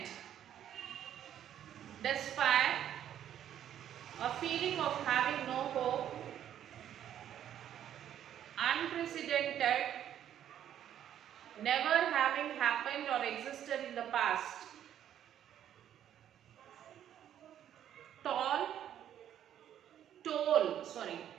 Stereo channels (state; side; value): quieter; left; 10.5 dB